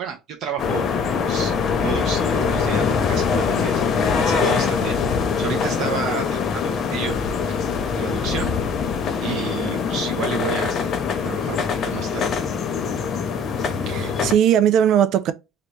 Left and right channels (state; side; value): normal; both; correlation 0.52